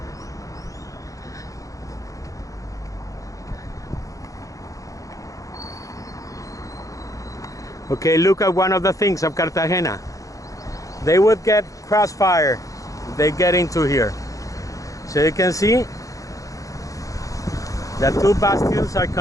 Okay, look at one of the things of Cartagena. They would get crossfire if they get into here. So you can see the two bastions are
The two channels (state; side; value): late; right; 0.16 ms